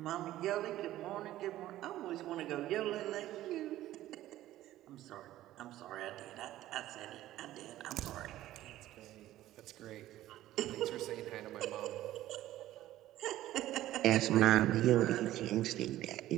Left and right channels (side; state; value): left; quieter; 14.4 dB